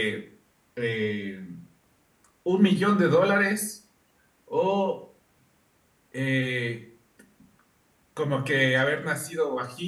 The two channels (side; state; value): both; identical; correlation 1.00